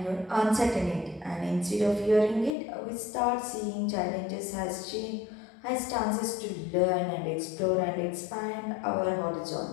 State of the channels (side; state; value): right; drops out; at 2.6 s